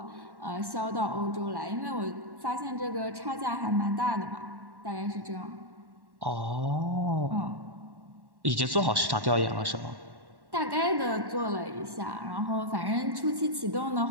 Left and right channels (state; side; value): late; left; 1.1 ms